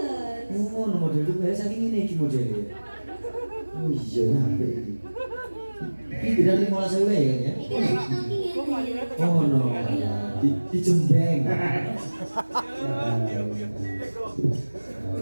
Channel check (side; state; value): both; inverted; correlation -1.00